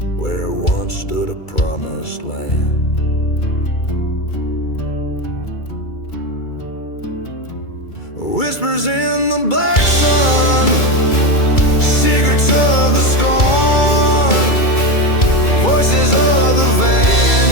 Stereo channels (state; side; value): late; right; 2.3 ms